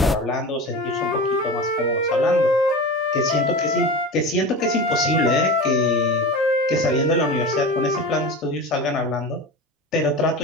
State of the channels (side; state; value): both; normal; correlation 0.30